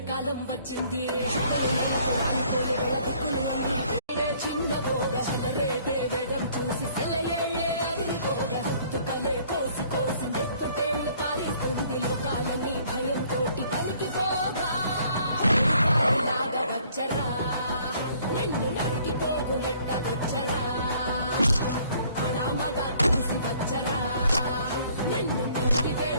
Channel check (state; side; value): inverted; both; correlation -0.59